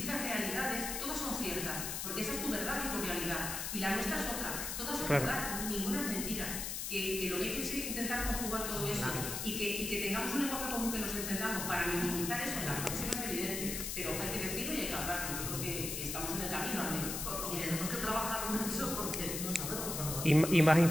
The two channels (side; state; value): left; noise; hiss, 3 dB below the sound